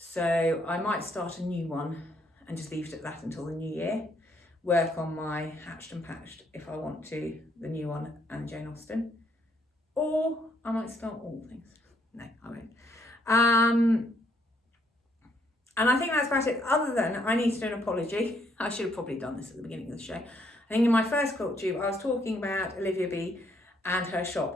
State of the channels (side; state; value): both; normal; correlation 0.70